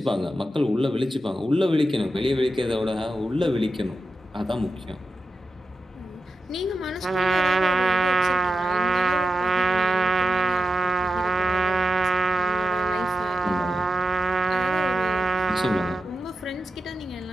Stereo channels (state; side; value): normal; both; correlation 0.90